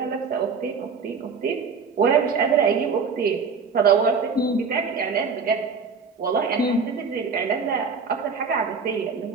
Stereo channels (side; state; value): left; quieter; 5.2 dB